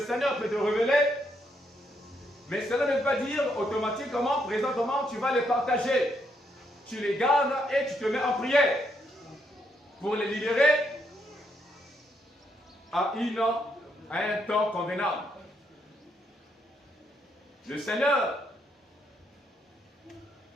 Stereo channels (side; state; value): both; normal; correlation 0.76